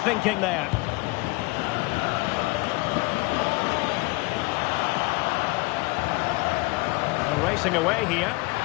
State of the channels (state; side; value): quieter; right; 24.6 dB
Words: thinking there. They're racing away here.